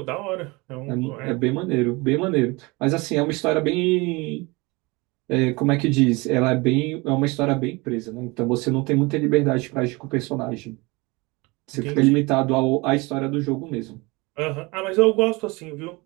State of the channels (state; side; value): quieter; left; 25.0 dB